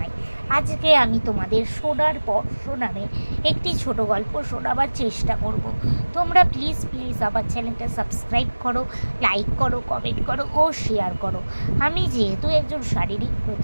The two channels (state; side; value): inverted; both; correlation -1.00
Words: আজকে আমি তোমাদের শোনার পর শোনাবে একটি ছোট গল্প শোনাবার চেষ্টা করব। তোমরা প্লিজ আমার চ্যানেলটা সাবস্ক্রাইব করো, লাইক করো, কমেন্ট করো ও শেয়ার করো। আমি যেহেতু একজন শারীরিক